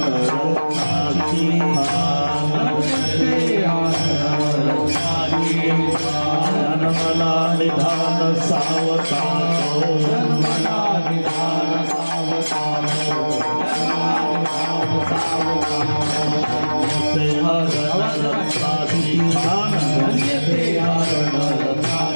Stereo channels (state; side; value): inverted; both; correlation -1.00